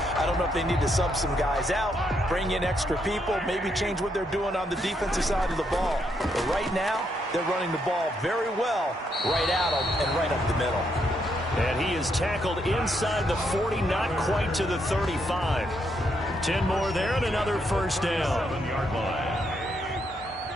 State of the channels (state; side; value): normal; both; correlation 0.77